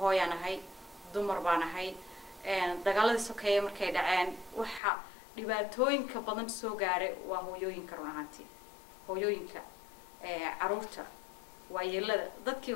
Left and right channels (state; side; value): drops out; right; at 4.8 s